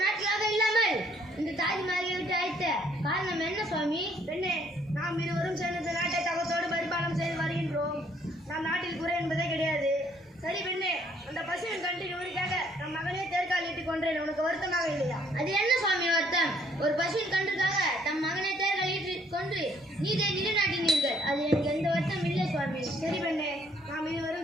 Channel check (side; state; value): both; normal; correlation 0.65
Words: நாட்களாக இல்லாமல் இந்த தாஜ்மஹாலை விட்டு அழைத்த காரணம் என்ன சுவாமி? பெண்ணே, நாம் இருவரும் சேர்ந்த நாட்டை தகத்தோடு பரிபாலனம் செய்து வருகின்றோம். நம் நாட்டில் குறை என்பதே கிடையாது. சரி பெண்ணே, அந்த பசுவின் கண்டின் ஊருக்காக நம் மகனே தேர்காலிட்டுக் கொன்றேன். உனக்கு வருத்தமாக இல்லையா? அது என்ன சுவாமி வருத்தம்? ஒரு பசுவின் கன்றுக்காக தம் மகனை தேர்காலிட்டு கொன்று நீதை நிலைநாட்டினீர்கள். அது எனக்கு எந்த வருத்தம் இல்லை சுவாமி. சரி பெண்ணே, நாம்